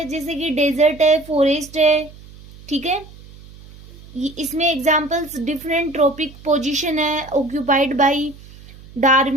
जैसे कि डेजर्ट है, फॉरेस्ट है, ठीक है। इसमें एग्जाम्पल्स डिफरेंट ट्रॉपिक पोजीशन है, ऑक्यूपाइड बाय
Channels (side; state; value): right; noise; hum, 20 dB below the sound